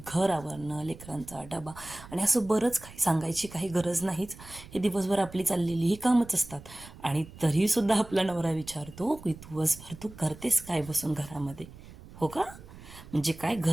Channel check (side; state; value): right; noise; rumble, 18 dB below the sound